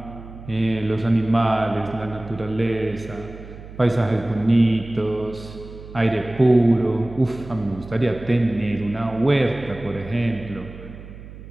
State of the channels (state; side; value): noise; right; hum, 15 dB below the sound